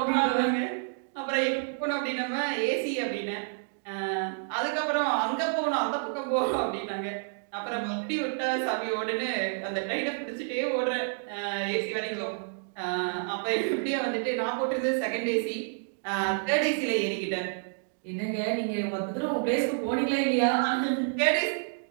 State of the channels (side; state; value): left; silent; digital silence